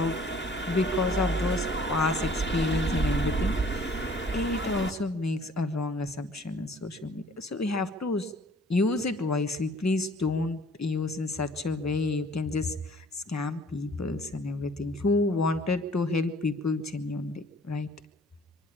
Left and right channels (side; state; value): both; normal; correlation 0.54